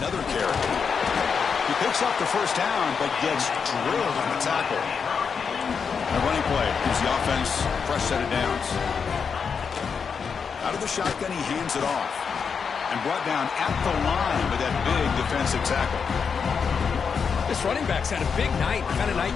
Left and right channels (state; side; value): quieter; right; 6.1 dB